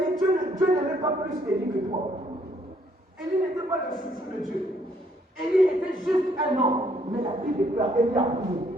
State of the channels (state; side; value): normal; both; correlation 0.67